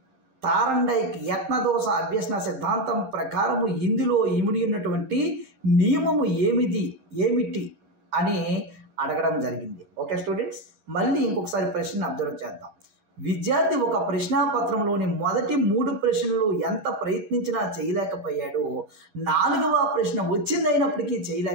తారండైక్ యత్నదోష అభ్యసన సిద్ధాంతం ప్రకారము ఇందులో ఇమిడి ఉన్నటువంటి నియమము ఏమిటి అని అడగడం జరిగింది. ఓకే స్టూడెంట్స్, మళ్ళీ ఇంకొకసారి ప్రశ్నను అబ్జర్వ్ చేద్దాం. విద్యార్థి ఒక ప్రశ్నాపత్రంలోని మొదటి 3 ప్రశ్నలు ఎంత ప్రయత్నించినా చేయలేకపోయాడు. 4వ ప్రశ్న వచ్చిందైనప్పటికీ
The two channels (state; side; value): late; left; 11 ms